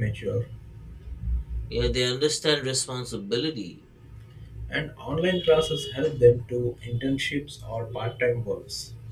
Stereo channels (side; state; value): both; identical; correlation 1.00